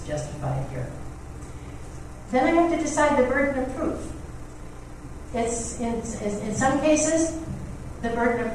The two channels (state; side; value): identical; both; correlation 1.00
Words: justified here. Then I have to decide the burden of proof. It's in some cases, the burden of